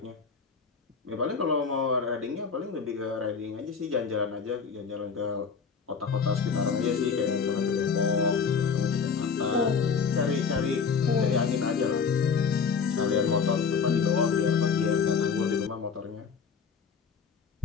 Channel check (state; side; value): quieter; right; 5.9 dB